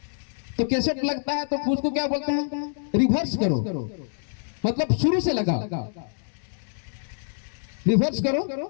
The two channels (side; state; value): right; silent; digital silence